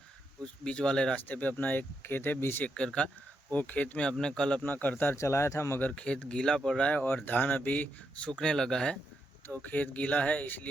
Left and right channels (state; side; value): normal; both; correlation 0.82